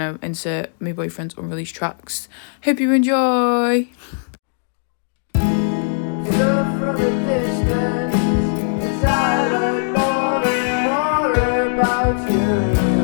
insert my boyfriend's unreleased tracks. Hope you enjoy.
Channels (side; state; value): right; silent; digital silence